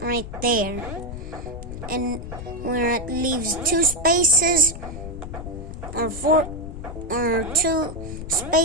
right there, and where it leaves two spaces or two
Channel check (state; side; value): noise; left; rumble, 9 dB below the sound